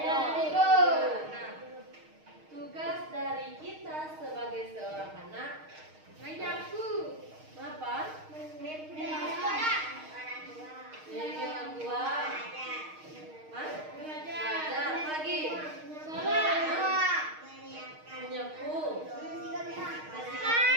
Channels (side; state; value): left; late; 6.5 ms